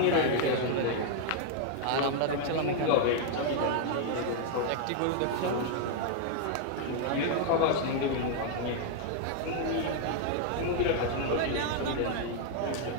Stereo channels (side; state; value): both; different; correlation 0.00